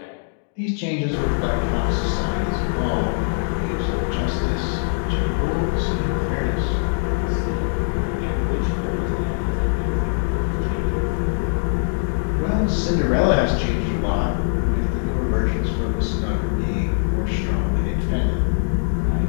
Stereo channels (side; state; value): right; silent; 64 dB below the other